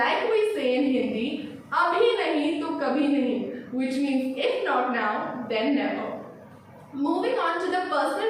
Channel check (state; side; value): identical; both; correlation 1.00